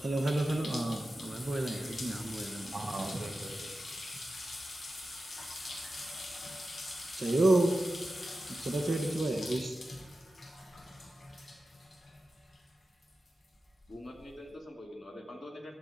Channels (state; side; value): normal; both; correlation 0.93